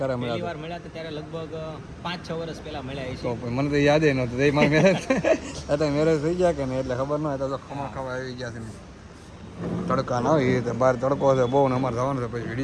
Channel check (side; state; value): both; identical; correlation 1.00